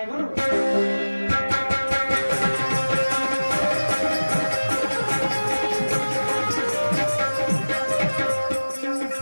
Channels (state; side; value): inverted; both; correlation -1.00